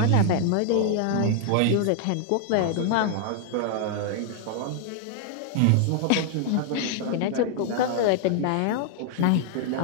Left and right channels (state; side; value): different; both; correlation 0.00